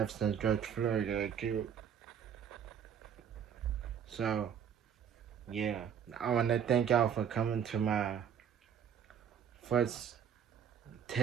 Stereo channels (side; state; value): left; quieter; 8.1 dB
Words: since George Floyd got killed. So, yeah. I want to thank y'all for coming to my first